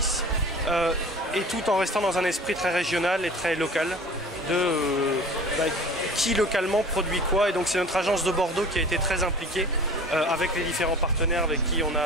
et tout en restant dans un esprit très régional et très local qui localement produit quoi. Et donc c'est notre agence de Bordeaux qui a été très impliquée avec les différents partenaires avec qui on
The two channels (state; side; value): normal; both; correlation 0.42